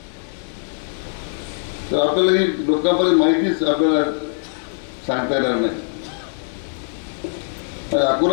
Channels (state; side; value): silent; right; digital silence